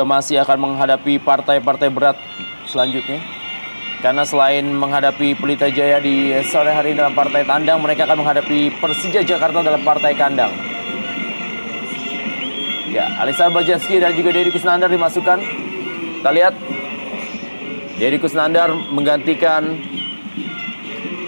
masih akan menghadapi partai-partai berat selanjutnya. Karena selain menghadapi Pelita Jaya di sore hari dalam partai tandang, mereka akan menghadapi Persija Jakarta dalam partai kandang. Ya, Alexander Bajewski dan juga Deddy Kusnandar dimasukkan. Kita lihat Deddy Kusnandar menggantikan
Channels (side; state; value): both; inverted; correlation -1.00